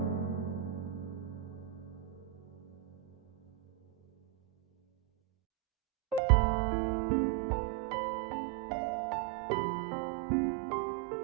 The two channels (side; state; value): left; drops out; at 6.2 s